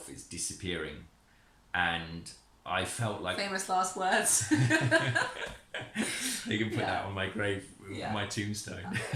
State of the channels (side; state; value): both; identical; correlation 1.00